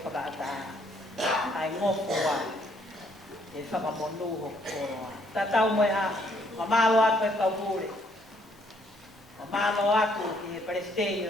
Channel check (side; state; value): both; normal; correlation 0.67